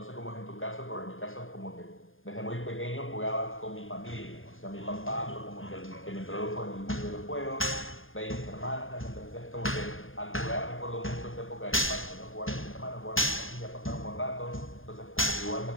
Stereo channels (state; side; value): late; right; 0.59 ms